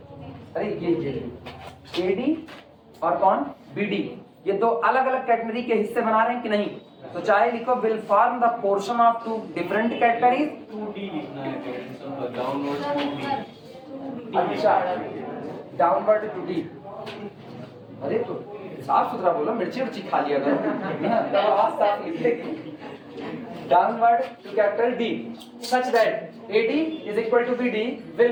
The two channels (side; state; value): both; identical; correlation 1.00